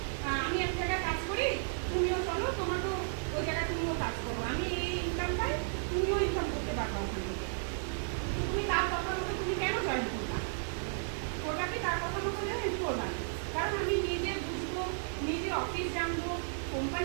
আমি এক জায়গায় কাজ করি, তুমিও চলো, তোমার তো ওই জায়গায় তুমিও কাজ করো, আমি এই ইনকাম পাই, তুমিও ইনকাম করতে পারবো ওখান থেকে। তুমি তার কথা মতো তুমি কেন জয়েন করবা? করবা কি তার কথা মতো জয়েন করবা? কারণ আমি নিজে বুঝবো, নিজে অফিস জানবো,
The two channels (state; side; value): silent; left; 55 dB below the other